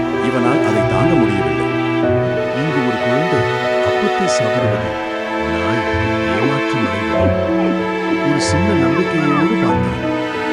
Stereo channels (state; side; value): identical; both; correlation 1.00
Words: இவனால் அதை தாங்க முடியவில்லை. இங்கு ஒரு குழந்தை அப்பத்தை சாப்பிடுவது நாய் ஏமாற்றம் அடைந்தான். ஒரு சின்ன நம்பிக்கையோடு பார்த்தான்.